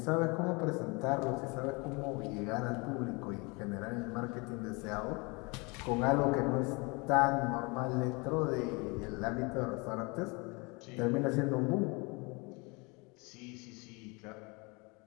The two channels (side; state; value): right; quieter; 28.3 dB